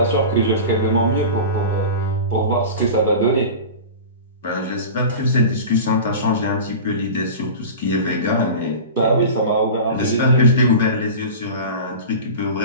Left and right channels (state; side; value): inverted; both; correlation -0.32